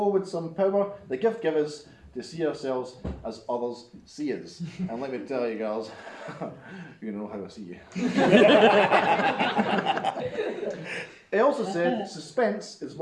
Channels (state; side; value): identical; both; correlation 1.00